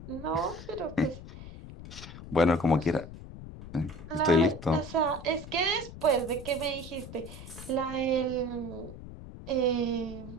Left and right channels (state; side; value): noise; left; rumble, 13 dB below the sound